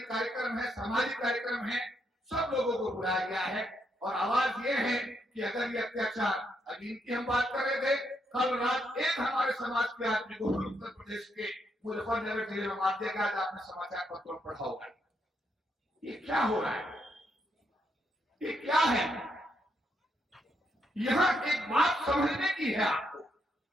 कार्यक्रम है, सामाजिक कार्यक्रम है, सब लोगों को बुलाया गया है। और आवाज ये है कि अगर ये अत्याचार, अभी इनकी हम बात कर रहे थे, कल रात एक हमारे समाज के आदमी को उत्तर प्रदेश के मुजफ्फरनगर जिले में मार दिया गया। आज आपने समाचार पत्रों में पढ़ा होगा। ये क्या हो रहा है, ये क्या है? यहां एक बात समझने की है आपको।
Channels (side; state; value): both; normal; correlation 0.78